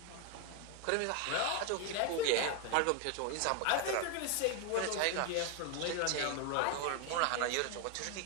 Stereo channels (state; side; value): different; both; correlation 0.01